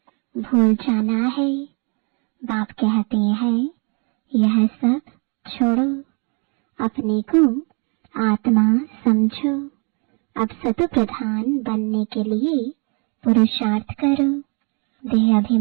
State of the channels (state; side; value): quieter; left; 35.0 dB